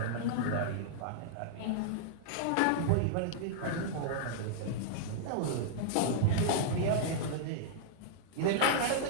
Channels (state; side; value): different; both; correlation -0.02